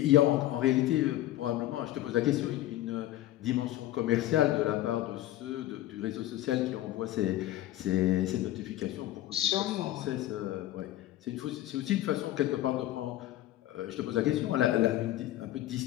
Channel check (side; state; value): right; quieter; 14.4 dB